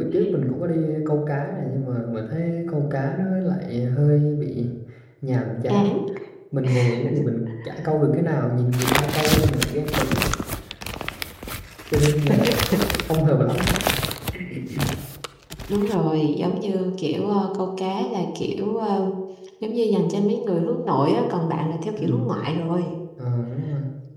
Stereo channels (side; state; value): both; identical; correlation 1.00